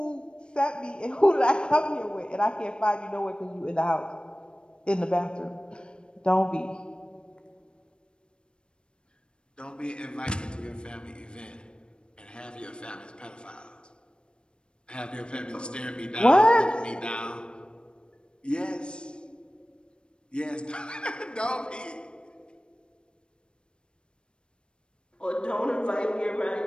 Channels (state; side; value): late; right; 0.053 ms